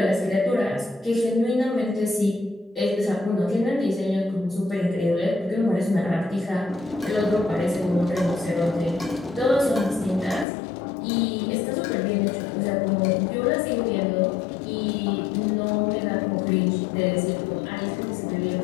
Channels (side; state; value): right; drops out; at 10.5 s